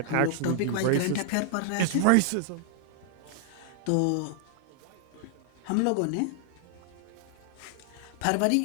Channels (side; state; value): both; different; correlation -0.01